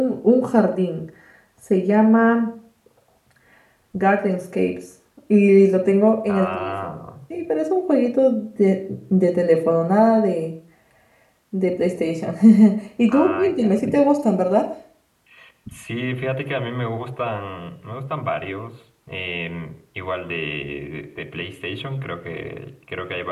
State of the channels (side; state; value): both; identical; correlation 1.00